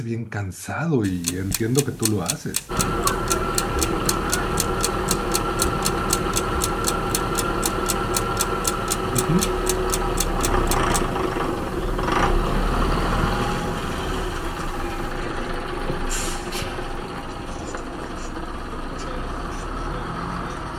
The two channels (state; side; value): identical; both; correlation 1.00